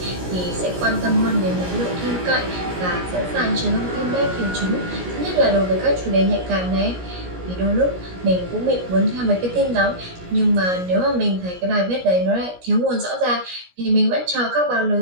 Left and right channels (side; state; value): left; late; 17 ms